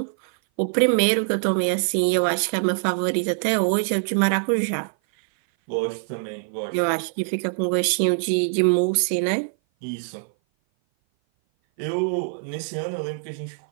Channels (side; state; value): left; silent; 57 dB below the other